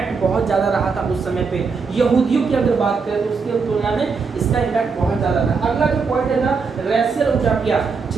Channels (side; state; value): left; quieter; 5.0 dB